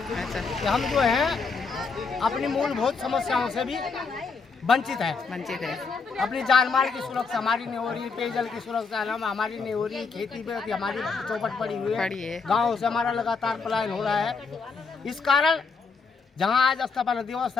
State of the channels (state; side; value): quieter; right; 4.8 dB